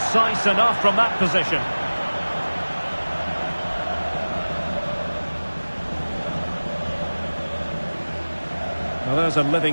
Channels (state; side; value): inverted; both; correlation -1.00